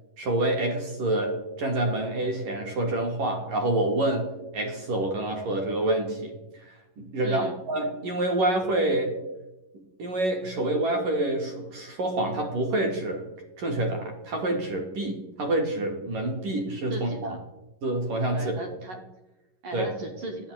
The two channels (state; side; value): late; left; 11 ms